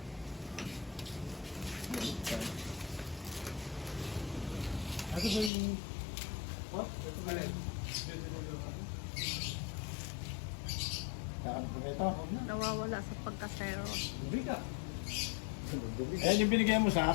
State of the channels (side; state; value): right; drops out; at 5.5 s